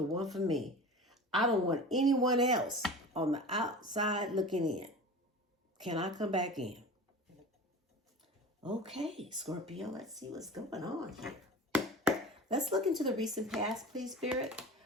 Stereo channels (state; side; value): normal; both; correlation 0.35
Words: one for me. I don't want anyone else on the outside looking in. Can I come back in? Okay, Scorpio, let's see what's going on here. Let's look into the recent past, please, Spirit.